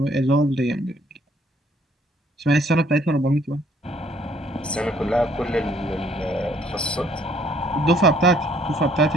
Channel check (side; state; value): both; normal; correlation 0.63